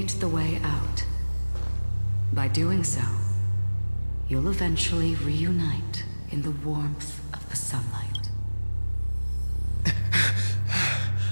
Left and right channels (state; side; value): inverted; both; correlation -1.00